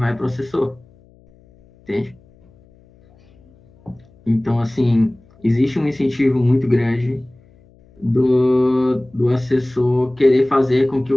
para o assessor, entende? Então, assim, existe um incentivo muito grande do assessor querer fazer com que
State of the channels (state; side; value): noise; left; hum, 29 dB below the sound